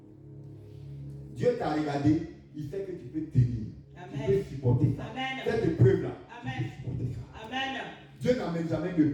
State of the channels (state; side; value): identical; both; correlation 1.00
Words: Dieu t'a regardé, il sait que tu peux tenir. Amen. Tu peux supporter ça. Amen. Cette épreuve-là, Amen. tu peux supporter ça. Amen. Dieu n'amène jamais de